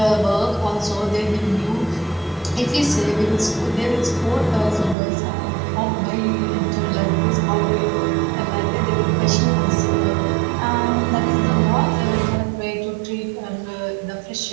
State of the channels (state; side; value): drops out; left; at 5.0 s